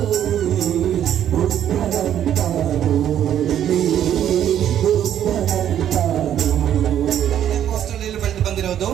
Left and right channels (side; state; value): left; quieter; 10.4 dB